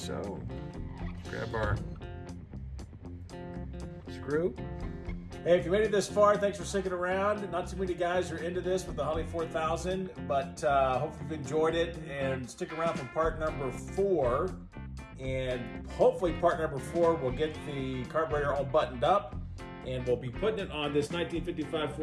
Grab our screw. Hey, if you made it this far, thanks for sticking around. Not too many guys are into this with the Holley 4000, but hopefully you've enjoyed it, and stick around for part number 4. And hopefully part number 4 will get the carburetor all buttoned up, and we'll be putting it on this 1955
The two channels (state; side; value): identical; both; correlation 1.00